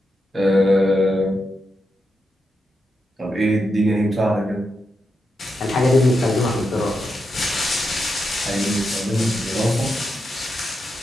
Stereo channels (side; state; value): both; normal; correlation 0.86